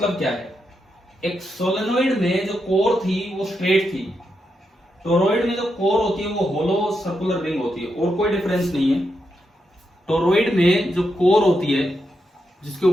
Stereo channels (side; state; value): both; normal; correlation 0.84